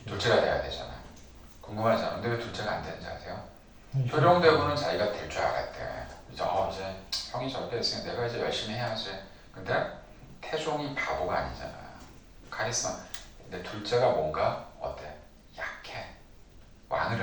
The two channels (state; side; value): identical; both; correlation 1.00